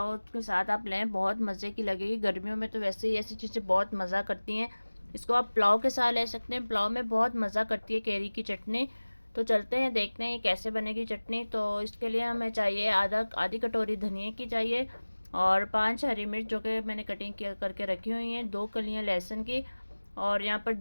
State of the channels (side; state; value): both; inverted; correlation -1.00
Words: उसके साथ आप लें, बहुत मज़े की लगेगी। गर्मियों में तो वैसे ही ऐसी चीज़ें बहुत मज़ा करती हैं। इसको आप पुलाव के साथ ले सकते हैं, पुलाव में बहुत मज़ा करती है केरी की चटनी। तो चलते हैं देखते हैं कैसे बनेगी चटनी। तो इसके लिए हमें चाहिए आधी कटोरी धनिया की चाहिए, और 5 हरी मिर्च जो कि मैंने कटिंग करके रखी हुई हैं, 2 कलियां लहसुन की, और यहाँ पर